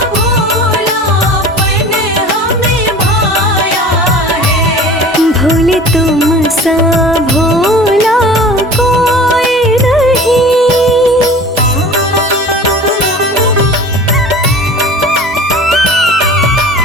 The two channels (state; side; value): normal; both; correlation 0.41